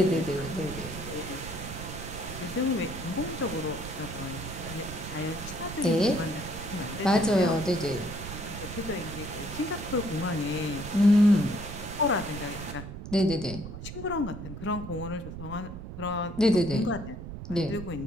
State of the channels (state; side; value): noise; right; rumble, 10 dB below the sound